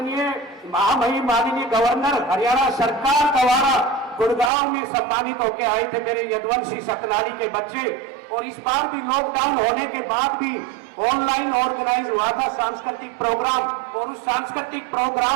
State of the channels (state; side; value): drops out; left; at 4.5 s